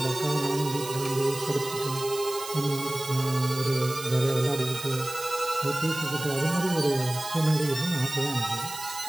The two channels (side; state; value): right; noise; hiss, 11 dB below the sound